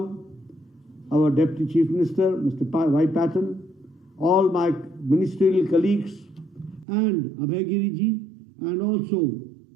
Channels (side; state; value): left; drops out; at 6.9 s